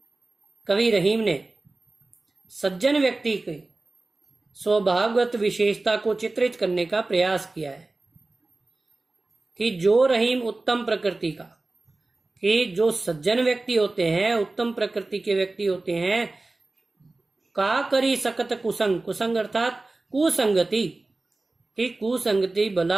कवि रहीम ने सज्जन व्यक्ति की स्वभावगत विशेषता को चित्रित करने का प्रयास किया है कि जो रहीम उत्तम प्रकृति का, कि जो सज्जन व्यक्ति होते हैं, उत्तम प्रकृति के व्यक्ति होते हैं, का करी सकत कुसंग, कुसंग अर्थात कुसंगति, कि कुसंगति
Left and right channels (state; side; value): quieter; left; 3.2 dB